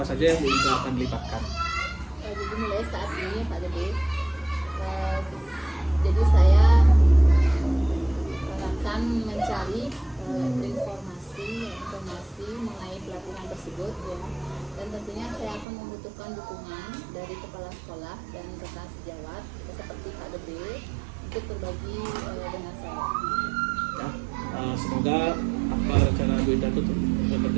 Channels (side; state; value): left; drops out; at 15.7 s